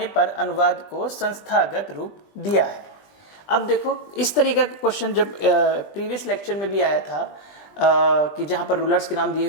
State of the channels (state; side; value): late; right; 20 ms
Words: पर अनुवाद को संस्थागत रूप दिया है? अब देखो, इस तरीके का क्वेश्चन जब प्रीवियस लेक्चर में भी आया था कि जहाँ पर रूलर्स के नाम दिए